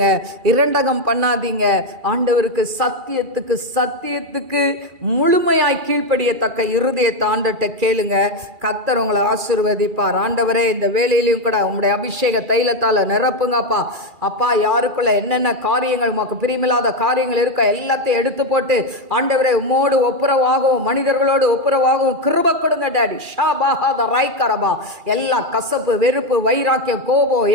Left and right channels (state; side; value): late; left; 2.4 ms